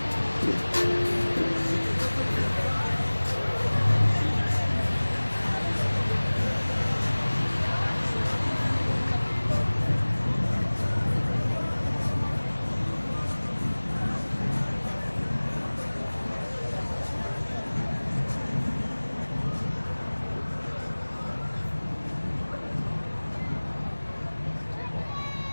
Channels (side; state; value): both; inverted; correlation -1.00